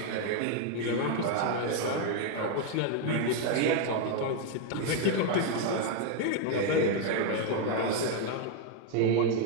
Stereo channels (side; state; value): both; different; correlation 0.00